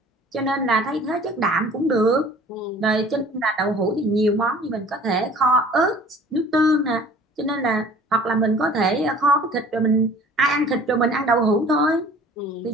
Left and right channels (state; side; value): normal; both; correlation 0.49